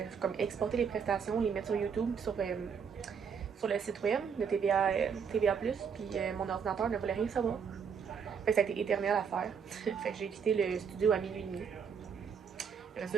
comme, exporter les prestations, les mettre sur YouTube, sur le site web de TVA+, puis mon ordinateur ne voulait rien savoir. Fait que ça a été éternel à faire. Fait que j'ai quitté le studio à minuit et demi.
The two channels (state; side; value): quieter; left; 6.6 dB